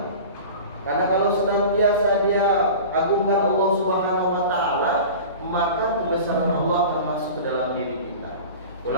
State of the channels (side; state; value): both; inverted; correlation -0.36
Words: Karena kalau senantiasa dia agungkan Allah Subhanahu wa Ta'ala, maka kebesaran Allah akan masuk ke dalam diri kita.